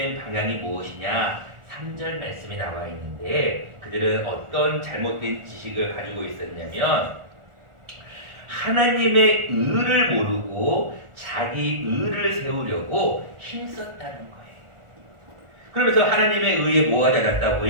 방향이 무엇이냐? 3절 말씀이 나와 있는데 그들은 어떤 잘못된 지식을 가지고 있었냐면 하나님의 의를 모르고 자기 의를 세우려고 힘썼다는 거예요. 그러면서 하나님의 의에 뭐가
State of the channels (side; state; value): left; late; 1.4 ms